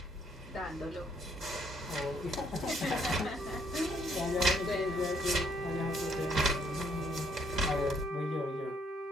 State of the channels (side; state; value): both; normal; correlation 0.67